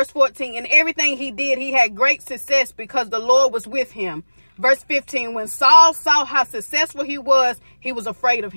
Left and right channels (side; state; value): both; inverted; correlation -1.00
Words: 14, in everything he did, he had great success because the Lord was with him. Verse 15, when Saul saw how successful he was afraid of